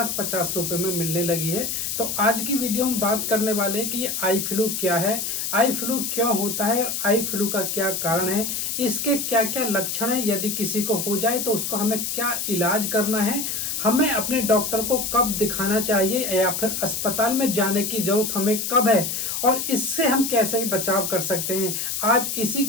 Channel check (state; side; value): noise; left; hiss, 2 dB below the sound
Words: रुपए में मिलने लगी है। तो आज की वीडियो में बात करने वाले हैं कि ये आई फ्लू क्या है, आई फ्लू क्यों होता है और आई फ्लू का क्या कारण है, इसके क्या क्या लक्षण है, यदि किसी को हो जाए तो उसको हमें क्या इलाज करना है, हमें अपने डॉक्टर को कब दिखाना चाहिए या फिर अस्पताल में जाने की जरूरत हमें कब है और इससे हम कैसे बचाव कर सकते हैं। आज इसी